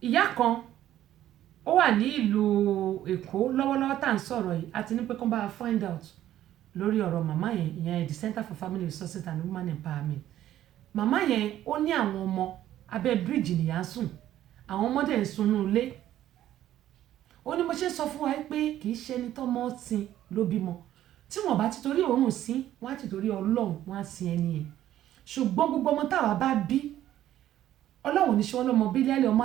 Ìyá kan ó wà ní ìlú Èkó lọ́wọ́lọ́wọ́ tá à ń sọ̀rọ̀ yìí àti ní pé kó bá find out lórí ọ̀rọ̀ màmá yẹn, ìyẹn the Center for Family Resources and Women Empowerment. Màmá yẹn ó ní àwọn ọmọ abẹ́ bíríìjì nìyá ń sùn, àwọn ọmọdé ń sunú ilé. Ó ní mo ṣe sọ fún wa pé kì í ṣe ẹni tọ́mọ sìn ló bímọ, tí wọ́n bá ti torí òórùn sí wọ́n á ti torí Ọlọ́run wọ́n á sin ẹni yẹn. Ṣùgbọ́n gbogbo ọmọ táwa bá bí Ọlọ́run ní ṣe wọ́n lọ́mọ bílíọ̀lì ọmọ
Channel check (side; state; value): left; quieter; 12.6 dB